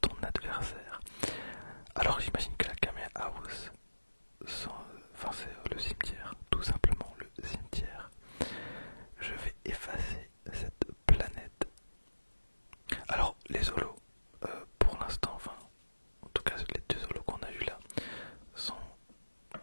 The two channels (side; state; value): both; inverted; correlation -1.00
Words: ton adversaire. Alors j'imagine que la Kame House, c'est le cimetière, tout simplement le cimetière. Je vais effacer cette planète. Alors les holos, pour l'instant, en tout cas les 2 holos qu'on a eu là, sont